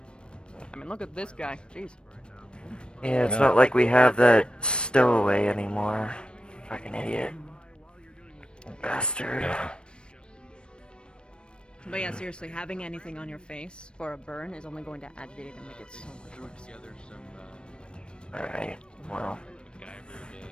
I mean, look at this guy. Jeez. Yeah, it's not like we have that stowaway anymore. Fucking idiot. Bastard. But yeah, seriously, having anything on your face for a burn is only going to agitate it and make it so much worse. Alright, well.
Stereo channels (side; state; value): right; late; 0.054 ms